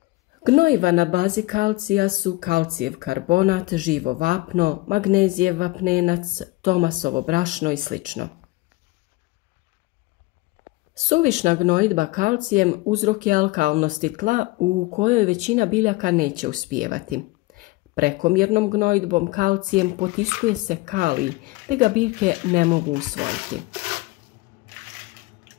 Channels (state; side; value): quieter; right; 21.5 dB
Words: Gnojiva na bazi kalcija su kalcijev karbonat, živo vapno, magnezijev vapnenac, tomasovo brašno i sl. Suvišna gnojidba kalcijem uzrok je alkalnosti tla u kojoj većina biljaka neće uspijevati. Prekomjernom gnojidbom kalcijem potiskuje se kalij, te ga biljke ne mogu usvojiti.